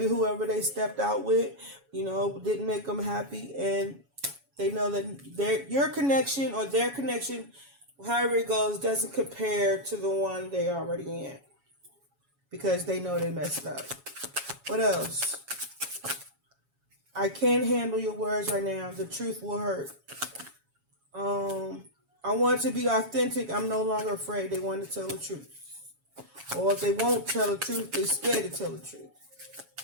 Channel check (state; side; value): late; left; 7.2 ms